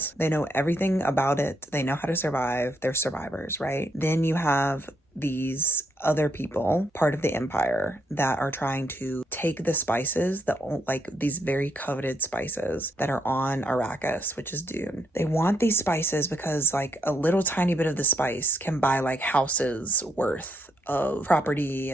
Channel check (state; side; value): normal; both; correlation 0.77